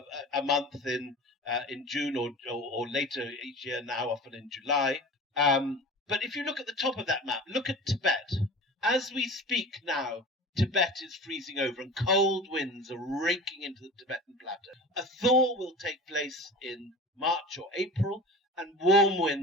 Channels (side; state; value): both; normal; correlation 0.35